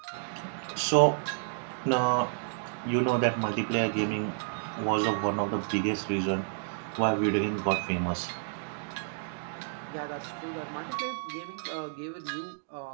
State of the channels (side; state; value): left; silent; digital silence